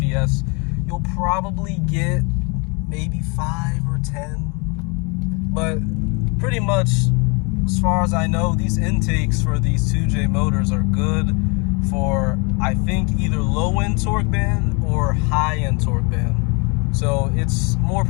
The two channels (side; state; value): right; quieter; 31.5 dB